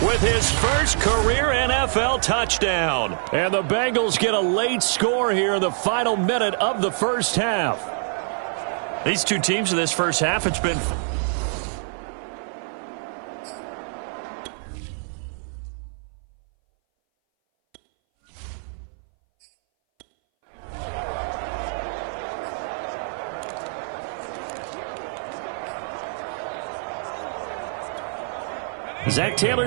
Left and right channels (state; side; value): silent; left; 59 dB below the other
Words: with his first career NFL touchdown. And the Bengals get a late score here in the final minute of the first half. These two teams in this first half, it's been... Zach